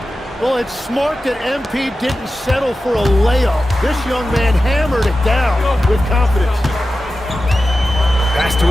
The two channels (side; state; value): both; normal; correlation 0.93